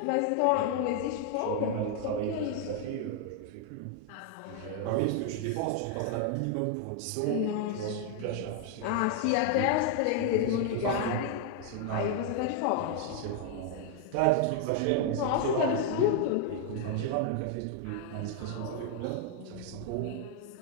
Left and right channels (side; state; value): both; different; correlation 0.00